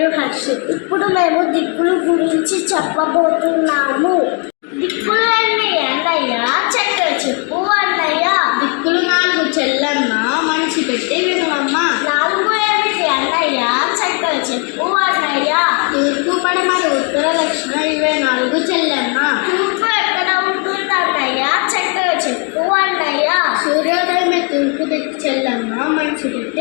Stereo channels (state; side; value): quieter; right; 35.7 dB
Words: హర్షిత్. ఇప్పుడు మేము దిక్కుల గురించి చెప్పబోతున్నాము. దిక్కులు ఎన్ని అన్నయ్య? చక్కగా చెప్పు అన్నయ్య. దిక్కులు 4 చెల్లమ్మ, మనిషి పెట్టి వినవమ్మ. 4 ఏమిటి అన్నయ్య? చక్కగా చెప్పు అన్నయ్య. తూర్పు, పడమర, ఉత్తర, దక్షిణ ఇవే 4 చెల్లమ్మ. తూర్పు ఎక్కడ ఉంటుంది అన్నయ్య? చక్కగా చెప్పు అన్నయ్య. సూర్యోదయమే తూర్పు దిక్కు చెల్లమ్మ, మనిషి